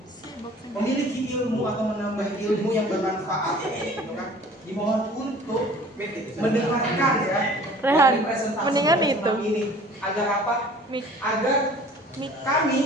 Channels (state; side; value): normal; both; correlation 0.48